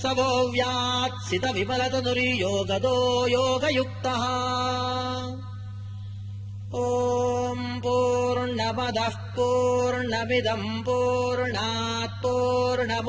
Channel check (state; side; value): identical; both; correlation 1.00